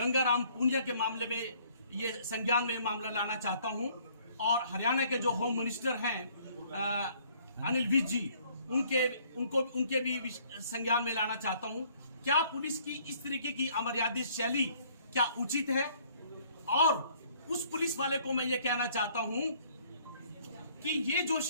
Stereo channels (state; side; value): inverted; both; correlation -0.61